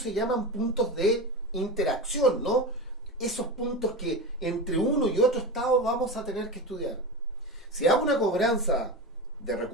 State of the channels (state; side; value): normal; both; correlation 0.24